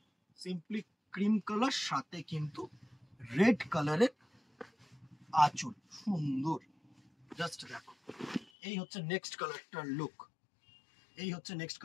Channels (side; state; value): right; drops out; at 8.5 s